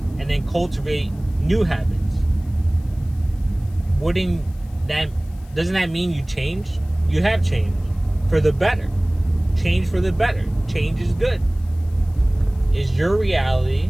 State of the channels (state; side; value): noise; left; hiss, 29 dB below the sound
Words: and then cultivate new habits. Doesn't that mean you changed? You have changed for the better. Change for the better. Change is good. It's your reality.